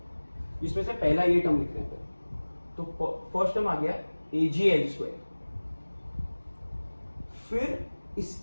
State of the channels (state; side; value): inverted; both; correlation -1.00